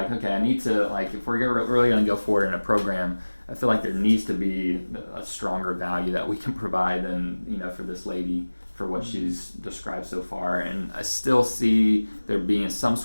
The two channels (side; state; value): both; inverted; correlation -1.00